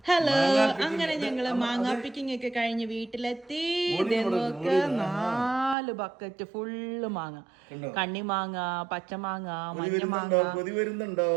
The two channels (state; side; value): drops out; left; at 5.8 s